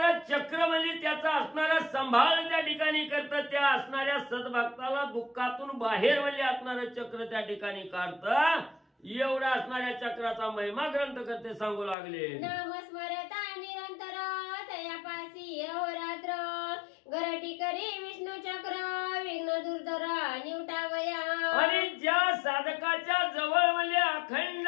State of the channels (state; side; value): drops out; right; at 12.0 s